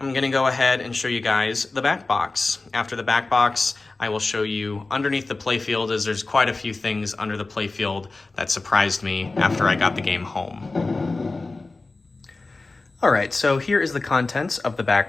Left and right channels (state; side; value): quieter; right; 3.5 dB